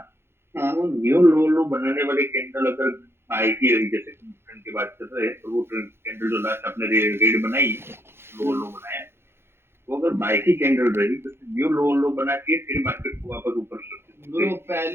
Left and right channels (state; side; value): late; left; 0.12 ms